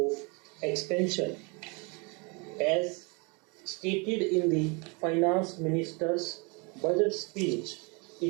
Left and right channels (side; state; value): left; quieter; 30.8 dB